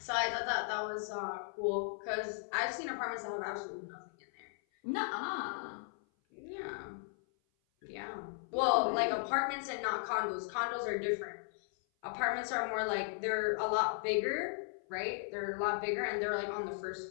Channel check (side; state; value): right; silent; 53 dB below the other